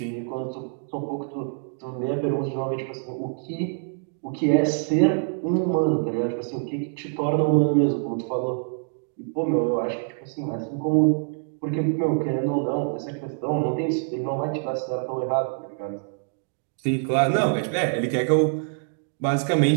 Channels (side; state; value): left; silent; digital silence